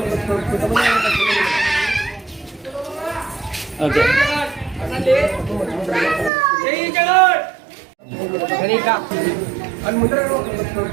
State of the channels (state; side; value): drops out; left; at 6.3 s